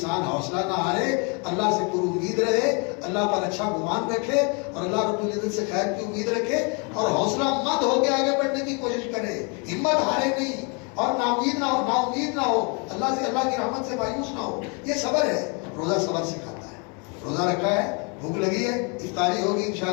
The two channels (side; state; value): right; quieter; 34.0 dB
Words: حوصلہ نہ ہارے، اللہ سے پر امید رہے، اللہ پر اچھا گمان رکھے اور اللہ رب العزت سے خیر کی امید رکھے اور حوصلہ مند ہو کے آگے بڑھنے کی کوشش کرے، ہمت ہارے نہیں اور نا امید نہ ہو، نا امید نہ ہو، اللہ سے، اللہ کی رحمت سے مایوس نہ ہو. یہ صبر ہے. روزہ صبر سکھاتا ہے. روزہ رکھا ہے، بھوک لگی ہے، افطاری ہوگی